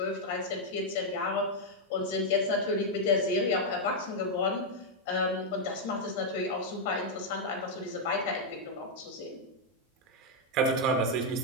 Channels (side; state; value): both; normal; correlation -0.03